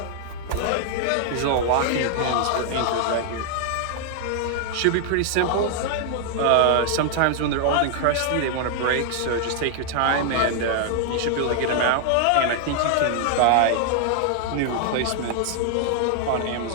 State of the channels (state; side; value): different; both; correlation 0.00